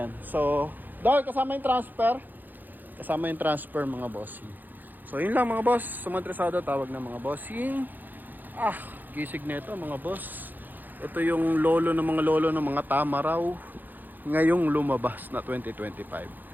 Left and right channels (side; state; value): left; late; 0.087 ms